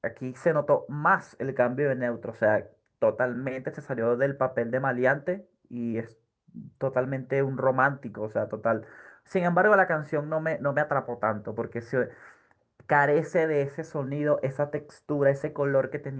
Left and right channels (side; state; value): both; identical; correlation 1.00